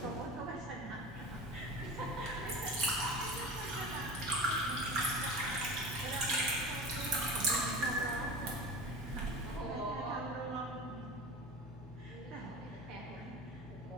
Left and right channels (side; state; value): both; normal; correlation 0.32